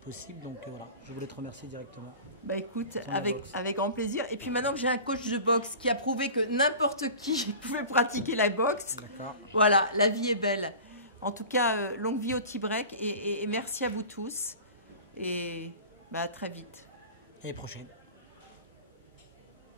Donc voilà, je voulais te remercier directement. Bah écoute, avec grand plaisir. Et puis maintenant que j'ai un coach de boxe qui a prouvé que n'importe qui pouvait pratiquer la boxe, voilà, la vie est belle. En tout cas, longue vie au T-Break et merci à vous tous. Et bah, à très vite. Et prochaine.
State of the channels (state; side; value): inverted; both; correlation -0.38